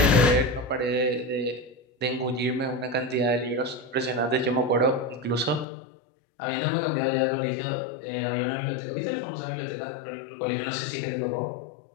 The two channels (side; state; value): right; drops out; at 5.7 s